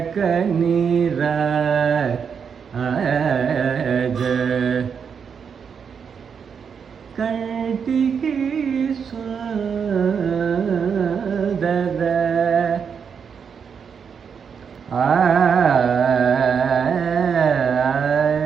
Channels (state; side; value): quieter; left; 6.7 dB